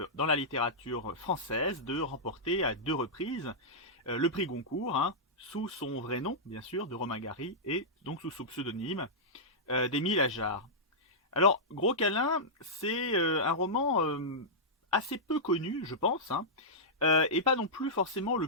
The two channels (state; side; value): normal; both; correlation -0.12